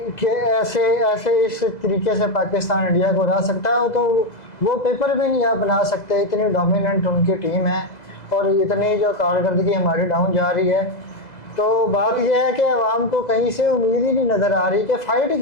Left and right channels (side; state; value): right; late; 2.0 ms